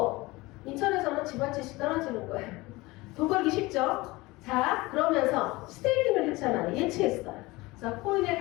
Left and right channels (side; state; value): right; quieter; 21.5 dB